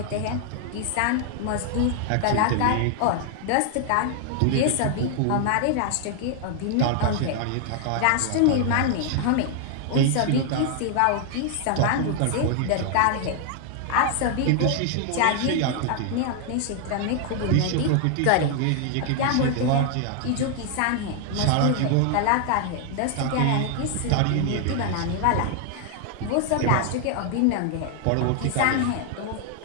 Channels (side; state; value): both; different; correlation 0.00